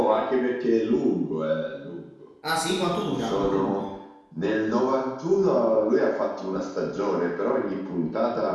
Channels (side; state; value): both; identical; correlation 1.00